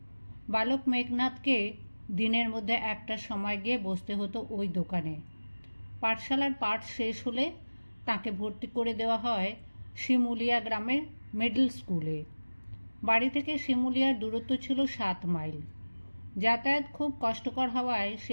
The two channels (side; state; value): both; inverted; correlation -1.00